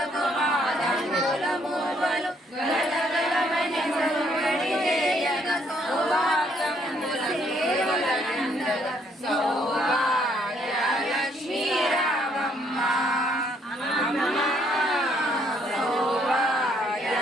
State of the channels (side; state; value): both; normal; correlation 0.68